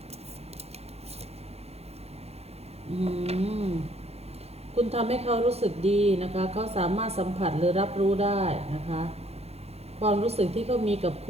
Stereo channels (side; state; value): left; late; 0.30 ms